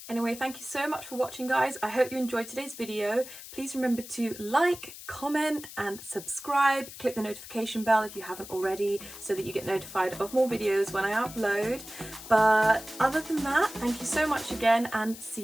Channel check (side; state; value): left; noise; hiss, 14 dB below the sound